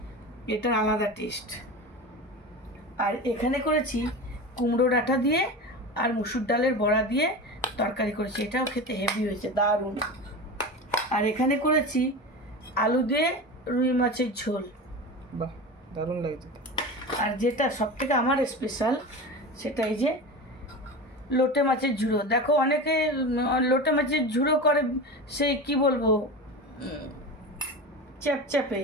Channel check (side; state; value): both; normal; correlation 0.28